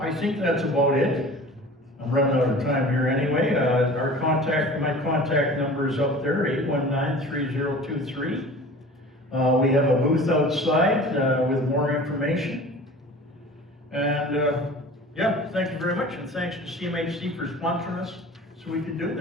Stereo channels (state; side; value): normal; both; correlation 0.41